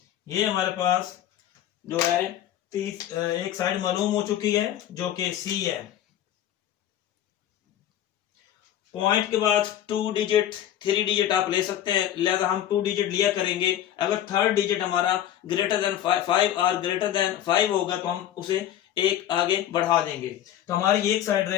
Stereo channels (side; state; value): right; quieter; 11.5 dB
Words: ये हमारे पास जो है एक साइड मालूम हो चुकी है जो कि सी है। पॉइंट के बाद 2 डिजिट 3 डिजिट आप ले सकते हैं, लिहाजा हम 2 डिजिट लिया करेंगे। अगर थर्ड डिजिट हमारा ग्रेटर देन 5 और ग्रेटर देन 5 होगा तो हम उसे एक आगे बढ़ा देंगे। तो हमारी एक साइड